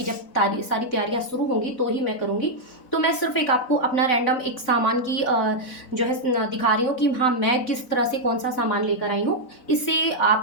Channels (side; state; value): right; late; 4.0 ms